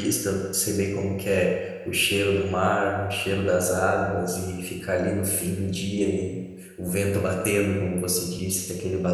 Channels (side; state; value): both; identical; correlation 1.00